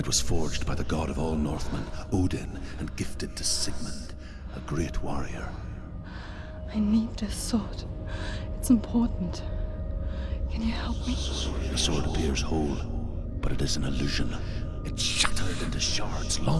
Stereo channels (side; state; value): both; identical; correlation 1.00